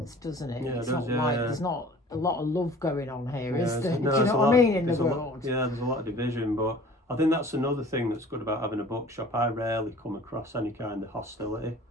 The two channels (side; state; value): both; normal; correlation 0.47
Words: doesn't it? Yeah, it's it does, not like there's not a lot of love going on here, is there? No, do you know what I mean, in the world? There's a lot of division, but I think that's another thing that's good about having a bookshop. I rarely come across any kind of hostility.